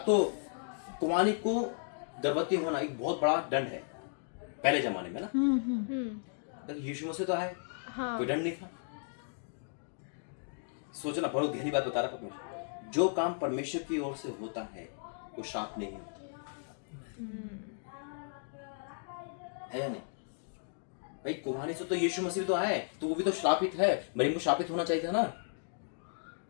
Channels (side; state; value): right; silent; digital silence